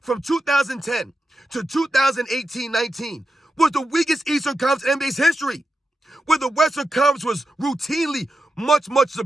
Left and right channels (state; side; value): normal; both; correlation 0.89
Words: 2010 to 2018-19, was the weakest Eastern Conference in NBA's history, where the Western Conference was routinely much, much